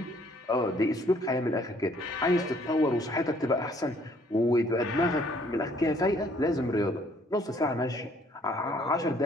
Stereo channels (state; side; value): normal; both; correlation 0.62